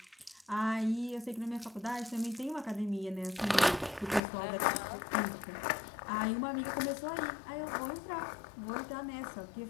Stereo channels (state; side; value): drops out; right; at 4.2 s